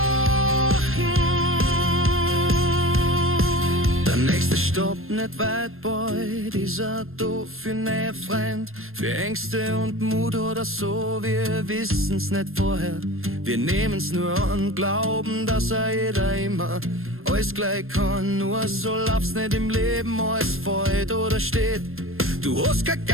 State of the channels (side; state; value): left; late; 0.61 ms